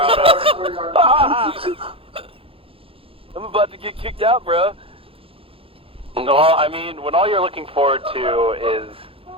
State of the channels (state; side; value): late; left; 0.27 ms